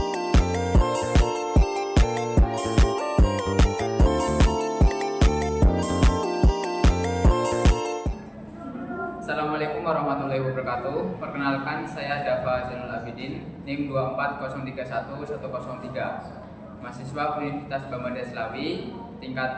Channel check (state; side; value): identical; both; correlation 1.00